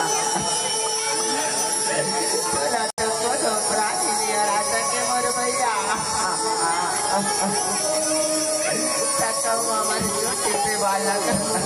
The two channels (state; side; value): identical; both; correlation 1.00